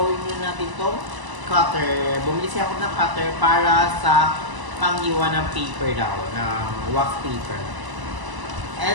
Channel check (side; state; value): left; late; 1.0 ms